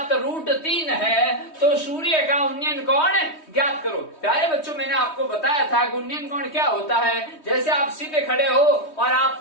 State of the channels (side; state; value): right; late; 3.2 ms